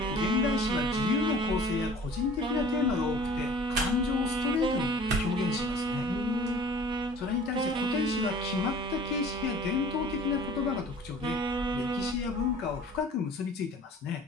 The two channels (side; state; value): both; normal; correlation 0.47